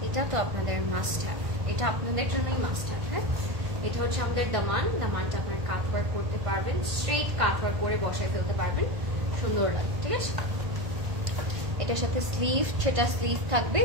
এটা তো আপনাদের মাস্ট হ্যাভ, এটা আপনাদের জন্যই মাস্ট হ্যাভ। হ্যাঁ, এটা হচ্ছে আমাদের দামান। দামানটা আপনার কাট ওয়ার্ক করতে পারবেন, স্ট্রেট কাট ওয়ার্ক করে বসায় ফেলতে পারবেন, সুন্দর লাগে। ঠিক আছে, এটার সাথে স্লিভ, সেটা স্লিভ থাকবে,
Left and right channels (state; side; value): late; left; 1.5 ms